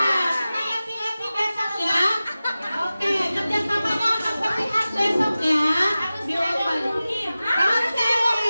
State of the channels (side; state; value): both; inverted; correlation -0.96